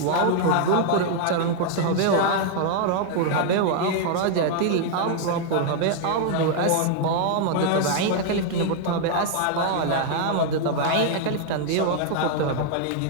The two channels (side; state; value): both; different; correlation 0.00